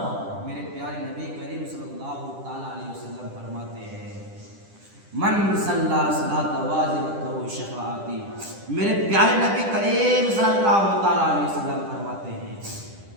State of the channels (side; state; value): left; late; 10 ms